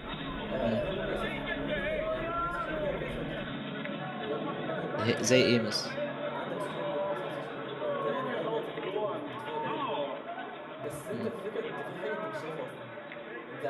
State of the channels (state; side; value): identical; both; correlation 1.00